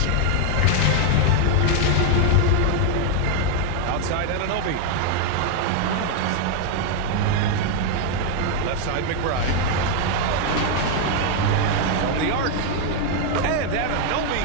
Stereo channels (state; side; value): different; both; correlation 0.00